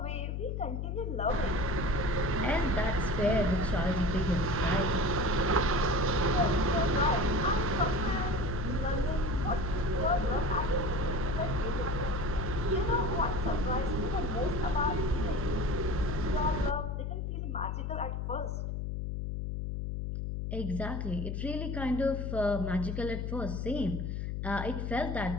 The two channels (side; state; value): left; noise; hum, 3 dB below the sound